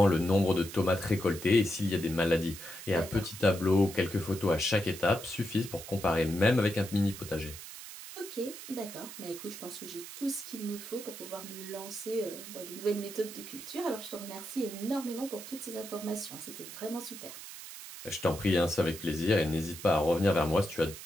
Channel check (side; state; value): right; noise; hiss, 12 dB below the sound